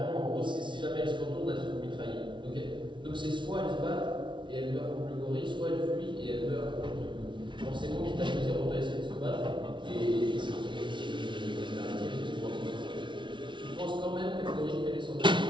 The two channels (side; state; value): left; late; 0.24 ms